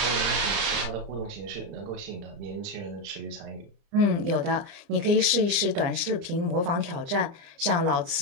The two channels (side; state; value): left; late; 29 ms